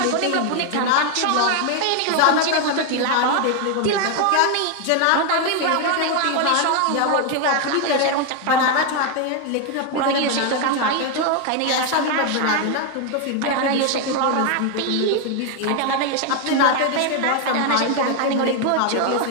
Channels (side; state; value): both; different; correlation 0.01